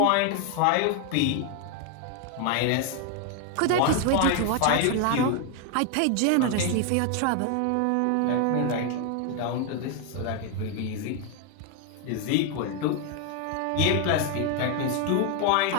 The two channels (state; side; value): different; both; correlation 0.01